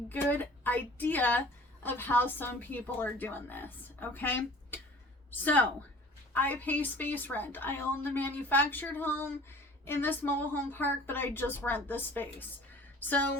idea of how some people are doing this, okay? So, I pay space rent. I own the manufactured home in this mobile home park, but I just rent the space.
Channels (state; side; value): normal; both; correlation 0.46